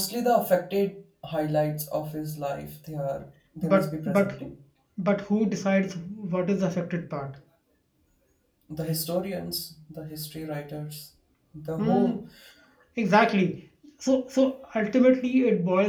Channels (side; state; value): both; identical; correlation 1.00